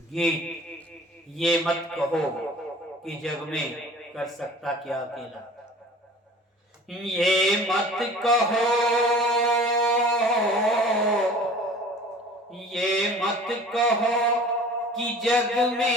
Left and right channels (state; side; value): normal; both; correlation 0.45